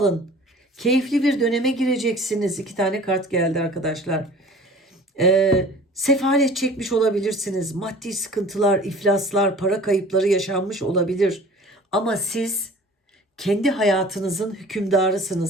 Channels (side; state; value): both; normal; correlation 0.45